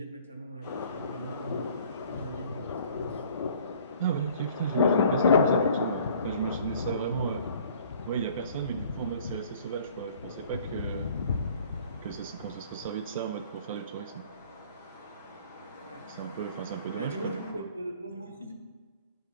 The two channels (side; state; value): both; inverted; correlation -0.53